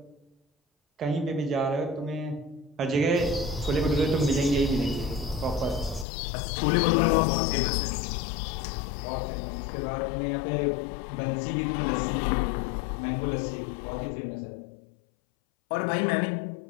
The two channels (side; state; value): right; drops out; at 6.1 s